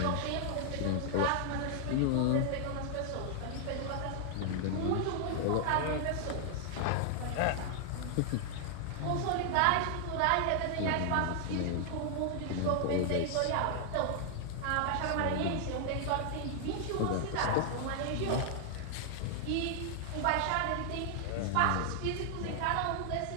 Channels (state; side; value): different; both; correlation 0.00